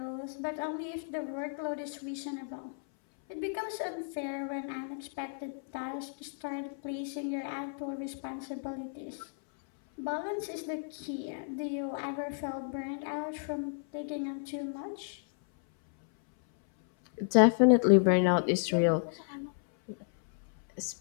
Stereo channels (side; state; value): right; silent; 56 dB below the other